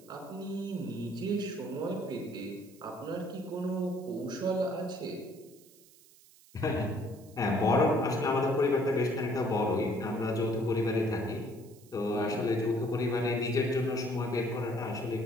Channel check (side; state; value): right; noise; hiss, 25 dB below the sound